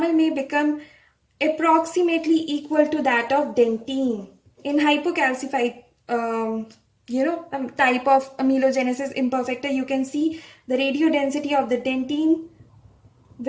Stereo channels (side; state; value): both; identical; correlation 1.00